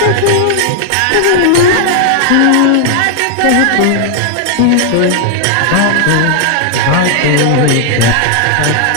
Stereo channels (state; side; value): different; both; correlation 0.00